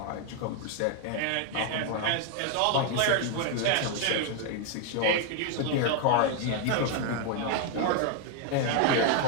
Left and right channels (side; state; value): both; different; correlation 0.00